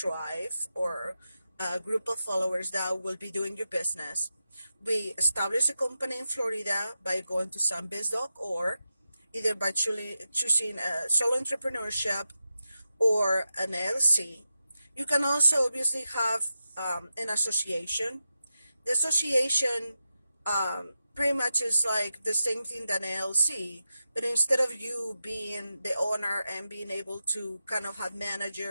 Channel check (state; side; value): inverted; both; correlation -0.91